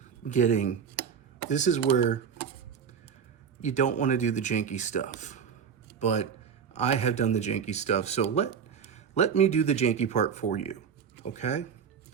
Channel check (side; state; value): left; quieter; 7.1 dB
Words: getting, this is where you don't wanna do the janky stuff, but I have done the janky stuff. So let me do the janky part for you, okay?